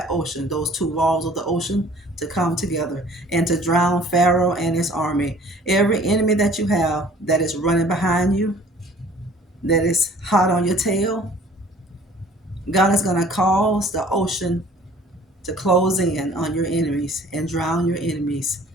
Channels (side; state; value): both; normal; correlation 0.51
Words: ocean, those two walls of the ocean, to come together and to drown Pharaoh and his army. Every enemy that you have that is running behind you, that is hot on your tail, God is going to cause the ocean to close in on your enemies and drown your enemies.